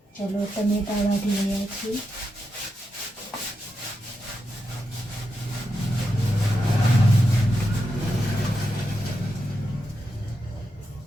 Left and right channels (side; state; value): both; normal; correlation 0.86